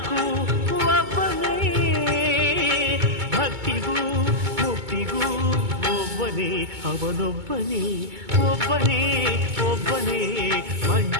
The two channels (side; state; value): left; late; 2.2 ms